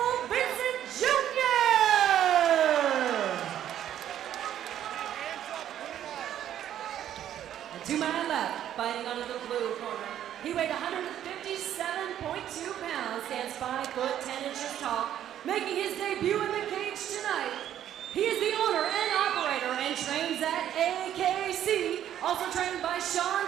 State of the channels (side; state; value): left; quieter; 11.0 dB